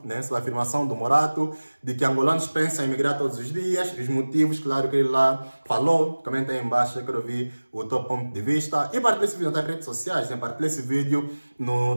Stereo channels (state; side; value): inverted; both; correlation -1.00